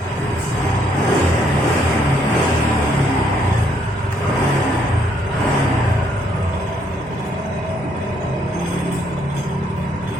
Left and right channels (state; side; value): normal; both; correlation 0.70